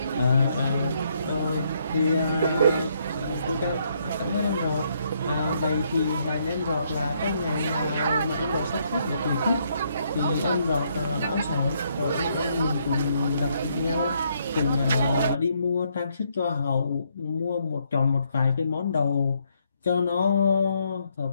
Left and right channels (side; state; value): both; inverted; correlation -0.73